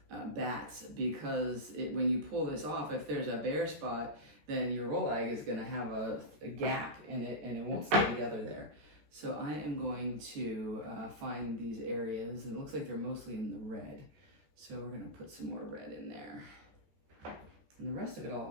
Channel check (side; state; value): left; late; 14 ms